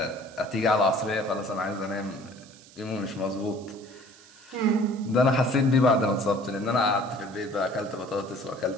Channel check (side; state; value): right; noise; hiss, 23 dB below the sound